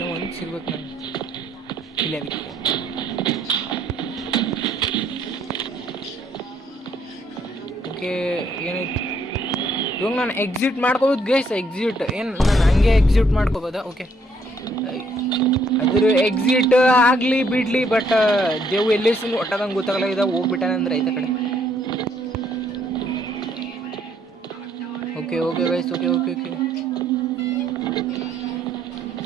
1 ಸಿಗ್ಬೇಕು ನಾನು. ಇಲ್ಲ ಓಕೆ, ಏನಾಯ್ತು ಇವಾಗ ನಾನು ಎಕ್ಸಿಟ್ ಮಾಡ್ಕೋಬೋದು ಗೈಸ್. ಎಕ್ಸಿಟ್ ಏನು ನಾನು ಹಂಗೆ ಎಕ್ಸಿಟ್ ಮಾಡ್ಕೋಬೋದಾ? ಓಕೆ, ಅದ್ರ ಎಕ್ಸಿಟ್ ಆಗಲಿ ಬಿಡಲಿ, ಬಟ್ ದೇವ್ ಎಲ್ಲಿ ಒಟ್ಟದಂಗೆ ಗೊತ್ತಾಗಲ್ಲ. ಇದಾಗ ಹೋಗ್ಬಿಟ್ಟಾನಂದ್ರೆ ಐತೆ ಕಡೆ. Okay okay guys, okay okay okay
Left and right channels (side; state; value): both; normal; correlation 0.68